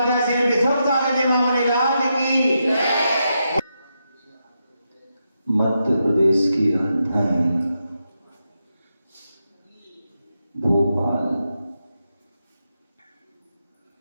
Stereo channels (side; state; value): both; inverted; correlation -0.85